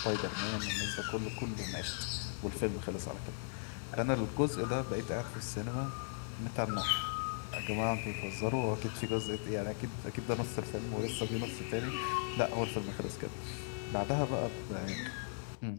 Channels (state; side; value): silent; right; digital silence